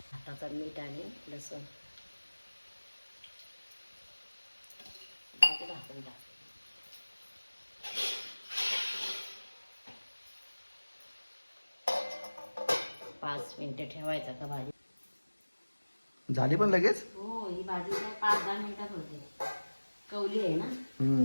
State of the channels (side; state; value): both; inverted; correlation -1.00